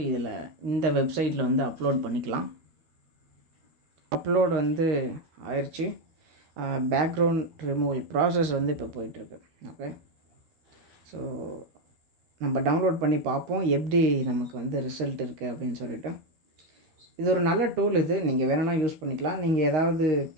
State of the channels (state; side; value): late; left; 13 ms